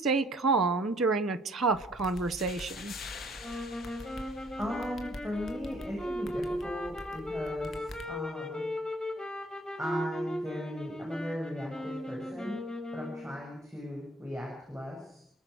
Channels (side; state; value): both; normal; correlation 0.60